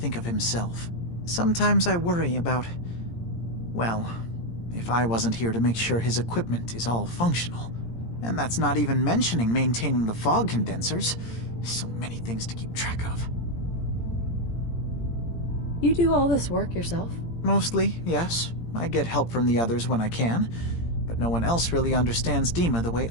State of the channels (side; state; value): right; late; 17 ms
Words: of himself. Sometimes I worry about... well, if I wasn't here to make sure his equipment is all functional. And that's not even mentioning maintaining the fog condensors. So many things to keep track of. You do all this work yourself? Mostly, yes. I get help from the others when I can, but no one else really understands Dima the way